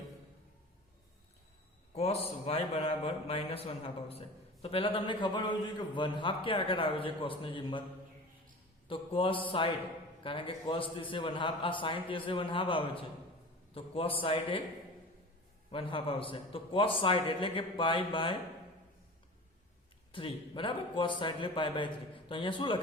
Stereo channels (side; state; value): both; normal; correlation 0.36